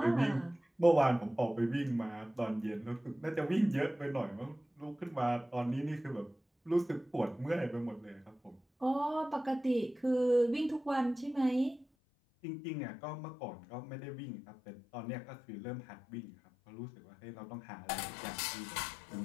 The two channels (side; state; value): right; drops out; at 11.9 s